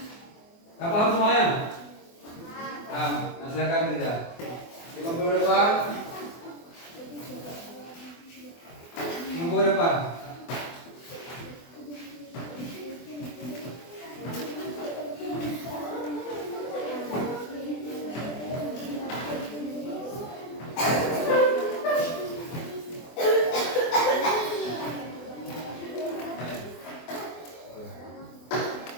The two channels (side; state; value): right; late; 24 ms